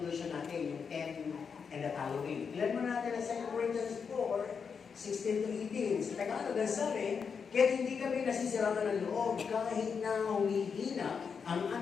natin, yung 10 and the following. Tingnan mo natin ang 2 Corinthians 4:16 to 18. Sa Tagalog, ang sabi, kaya hindi kami nasisiraan ng loob kahit na humihina ang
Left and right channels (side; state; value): right; quieter; 6.1 dB